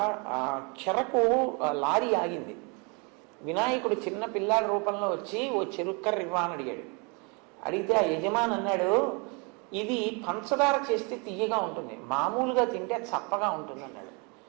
చెరకు లారీ ఆగింది. వినాయకుడు చిన్న పిల్లాడి రూపంలో వచ్చి ఓ చెరుక్కర్ర ఇవ్వా అని అడిగాడు. అడిగితే ఆ యజమాని అన్నాడు, ఇది పంచదార చేస్తే తీయగా ఉంటుంది, మామూలుగా తింటే చప్పగా ఉంటుంది అన్నాడు.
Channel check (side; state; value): left; quieter; 32.4 dB